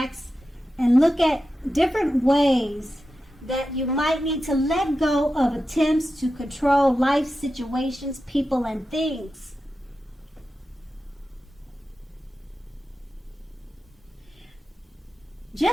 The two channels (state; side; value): normal; both; correlation 0.91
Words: and look at different ways that you might need to let go of attempts to control life situations, people, and things.